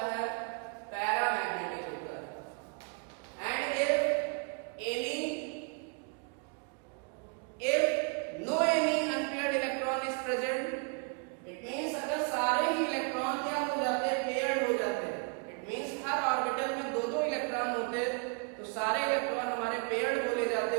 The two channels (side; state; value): left; quieter; 38.7 dB